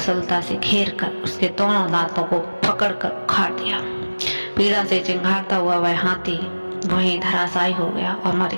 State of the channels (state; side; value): inverted; both; correlation -1.00